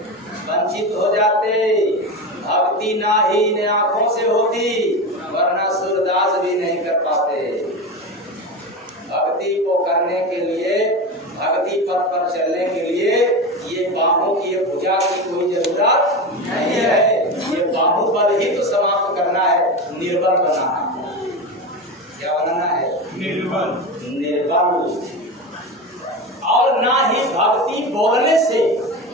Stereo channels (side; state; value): both; normal; correlation 0.23